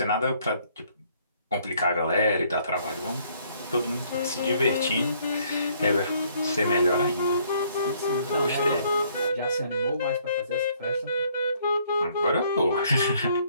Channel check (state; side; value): inverted; both; correlation -0.65